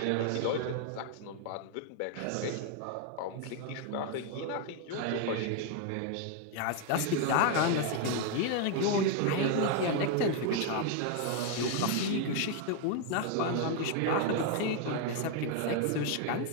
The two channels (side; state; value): both; different; correlation 0.01